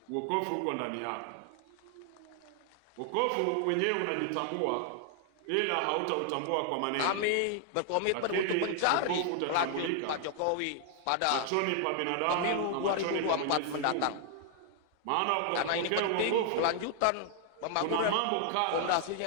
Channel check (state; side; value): different; both; correlation 0.00